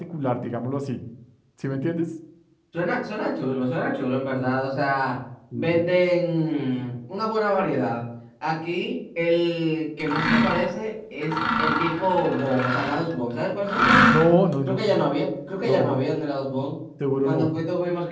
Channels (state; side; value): identical; both; correlation 1.00